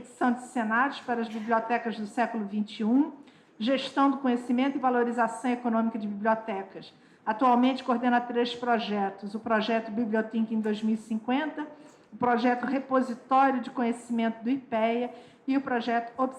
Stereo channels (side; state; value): both; identical; correlation 1.00